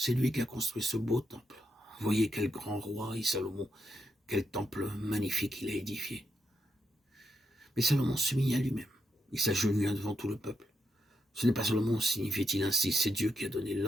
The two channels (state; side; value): normal; both; correlation 0.82